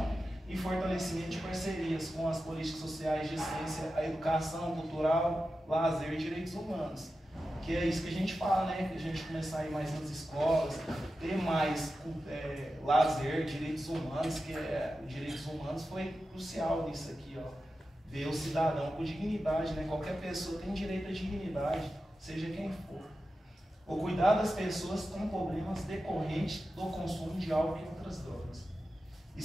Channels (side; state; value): both; normal; correlation 0.92